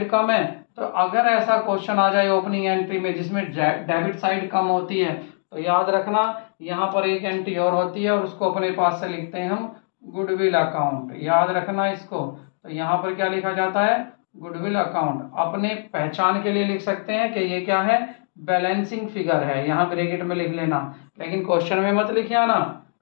कम है। तो अगर ऐसा क्वेश्चन आ जाए ओपनिंग एंट्री में जिसमें डेबिट साइड कम होती है, तो याद रखना यहाँ पर एक एंट्री और होती है, और उसको अपने पास से लिखते हैं हम गुडविल अकाउंट, याद रखना इसको। तो यहाँ पर क्या लिखा जाता है, गुडविल अकाउंट। अपने पहचान के लिए लिख सकते हैं कि ये क्या है, बैलेंसिंग फिगर है, यहाँ ब्रैकेट में लिख लेना, लेकिन क्वेश्चन में मत लिखिए ना,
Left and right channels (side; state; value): right; silent; digital silence